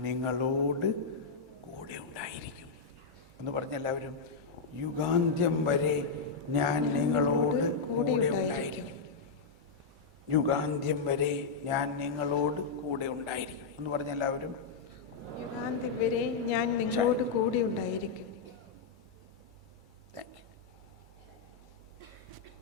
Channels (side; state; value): right; quieter; 4.9 dB